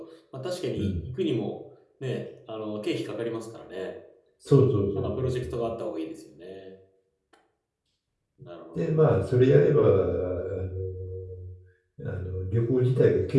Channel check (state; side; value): identical; both; correlation 1.00